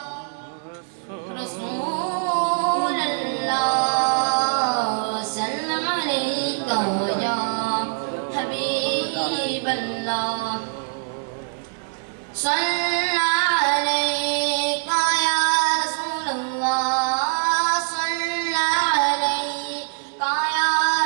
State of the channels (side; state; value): left; silent; 61 dB below the other